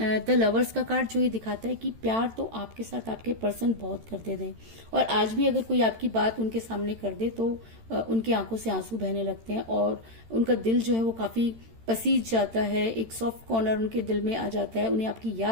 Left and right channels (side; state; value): left; late; 13 ms